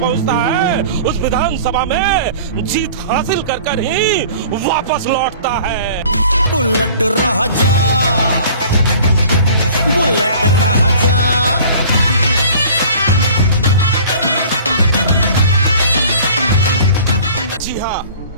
है उस विधानसभा में जीत हासिल कर ही वापस लौटता है। बुलेट राजा, बुलेट राजा। जी हाँ,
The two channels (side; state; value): both; inverted; correlation -0.46